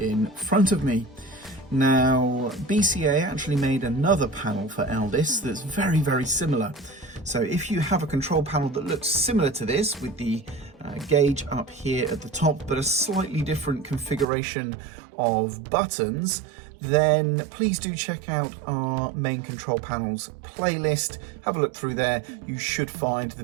front of me. Now, BCA actually made another panel for Elldis that's very similar. So if you have a control panel that looks similar to this with the gauge up here at the top but a slightly different configuration of buttons, then please do check out our main control panels playlist. Have a look through there. You should find the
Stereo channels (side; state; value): left; drops out; at 14.2 s